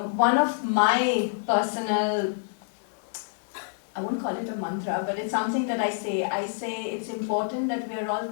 one of my personal, I won't call it a mantra, but it's something that I say it's important that we are all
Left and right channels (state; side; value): silent; right; digital silence